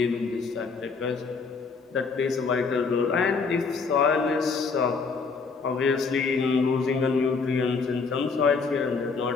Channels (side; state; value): right; quieter; 4.8 dB